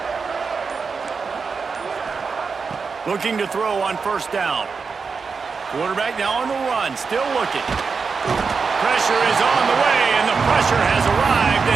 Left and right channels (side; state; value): left; quieter; 5.1 dB